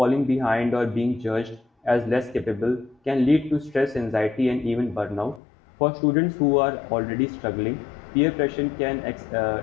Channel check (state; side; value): drops out; right; at 5.4 s